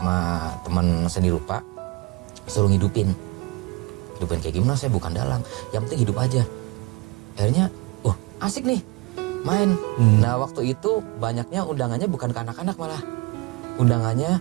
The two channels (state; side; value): quieter; left; 24.7 dB